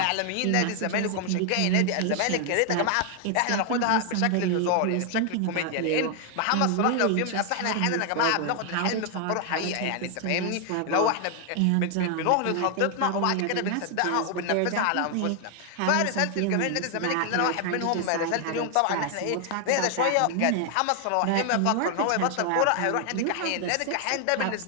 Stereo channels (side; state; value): both; different; correlation 0.00